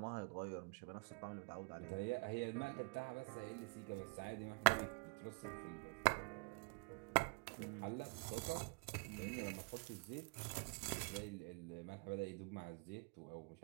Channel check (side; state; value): left; quieter; 33.1 dB